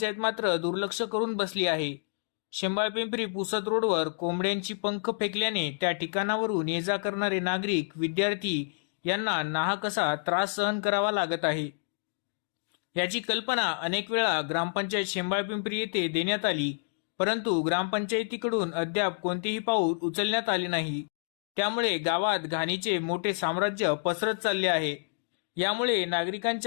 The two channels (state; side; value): silent; right; digital silence